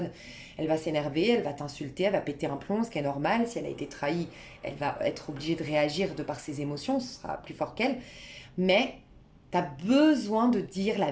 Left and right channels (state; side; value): identical; both; correlation 1.00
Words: elle va s'énerver, elle va t'insulter, elle va péter un plomb, ce qui est normal. Si elle a été trahie, elle va être obligée de réagir de par ses émotions, ce sera plus fort qu'elle. Mais tu as besoin de dire la